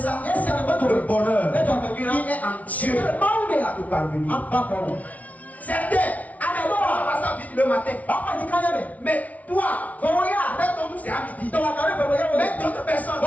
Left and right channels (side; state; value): right; late; 0.070 ms